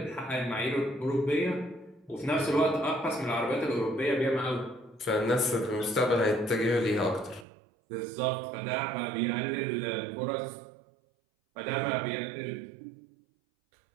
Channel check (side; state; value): left; drops out; at 7.5 s